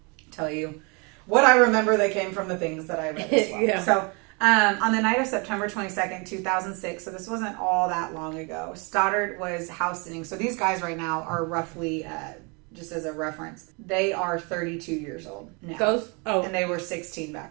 tell you what I remember that came from the things that I read as well. Yeah. So, on the night of September 22nd, 2006, so this wasn't all that long ago, Stoddart was house sitting. So these guys right now are roughly, just as a reference, they are 32 years old now. And they were 16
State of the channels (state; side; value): quieter; left; 31.4 dB